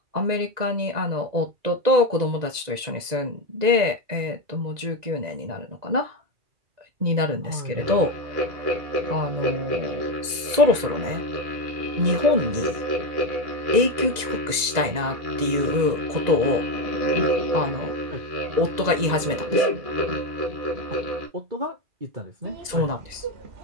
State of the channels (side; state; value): left; late; 2.0 ms